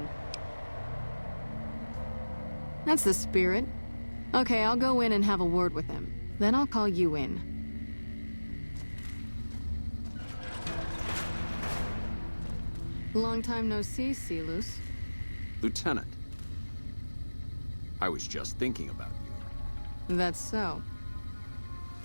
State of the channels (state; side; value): inverted; both; correlation -1.00